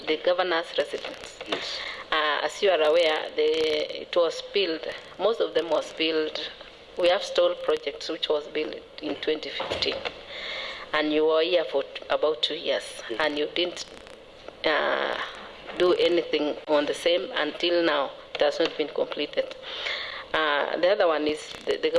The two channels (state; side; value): identical; both; correlation 1.00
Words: governor's residence. Yes. As you are aware, it was built, most of them was built. We have stalled projects which was built in 2015, and you were here for about 2 years, and you didn't do anything on the same until now. It has not been completed. The other one is the